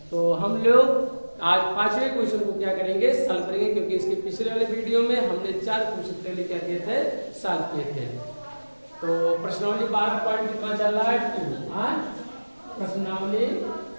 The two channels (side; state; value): both; inverted; correlation -1.00